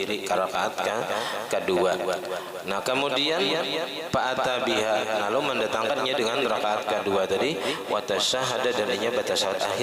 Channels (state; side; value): identical; both; correlation 1.00